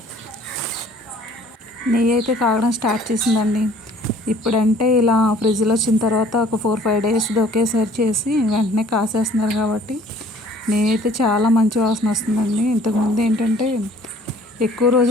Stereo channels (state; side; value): normal; both; correlation 0.55